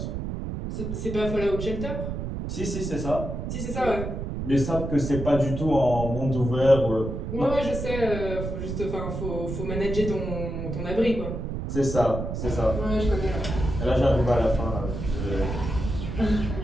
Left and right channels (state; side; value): noise; right; rumble, 5 dB below the sound